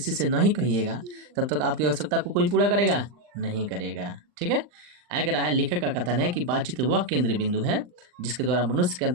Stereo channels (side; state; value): left; late; 39 ms